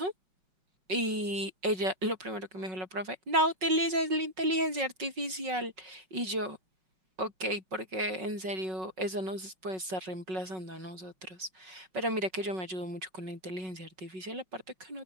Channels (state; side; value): late; left; 5.4 ms